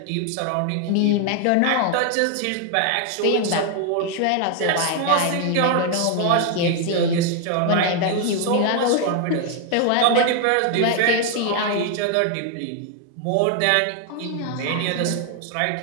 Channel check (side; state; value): both; different; correlation 0.00